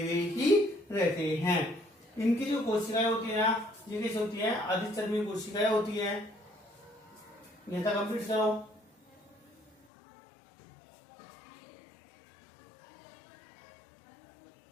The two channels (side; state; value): right; drops out; at 9.8 s